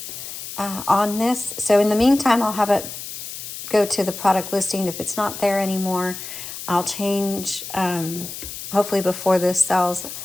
on this. So in the meantime, I'll have it go to the product listing. If it's not there anymore, I'll change, hopefully before this sells,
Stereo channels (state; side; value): noise; left; hiss, 10 dB below the sound